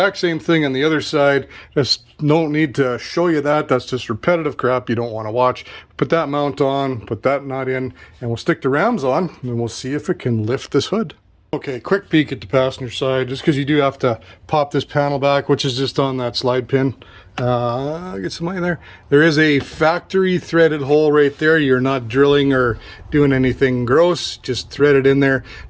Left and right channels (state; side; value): identical; both; correlation 1.00